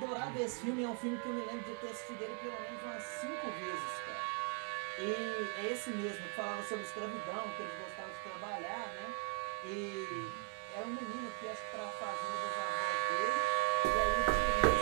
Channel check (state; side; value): quieter; left; 39.3 dB